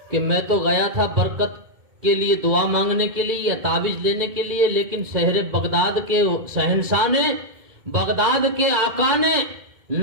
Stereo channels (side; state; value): left; late; 2.2 ms